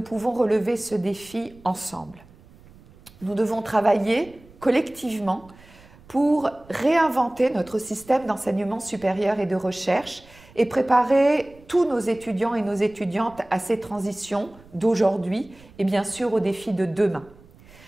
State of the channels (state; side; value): noise; right; rumble, 24 dB below the sound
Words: pouvons relever ce défi ensemble. Nous devons travailler collectivement pour réinventer notre système d'enseignement supérieur et de recherche et préparer tous nos étudiants et nos étudiantes à ces transitions d'aujourd'hui et bien sûr aux défis de demain.